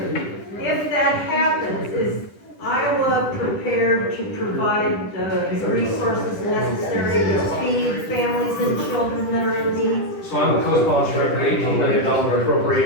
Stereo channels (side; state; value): right; late; 10 ms